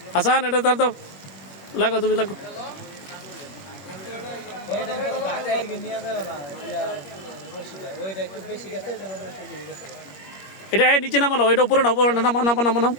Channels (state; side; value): late; right; 21 ms